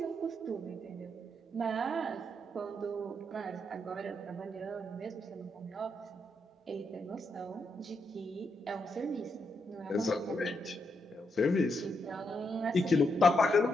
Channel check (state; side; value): normal; both; correlation 0.80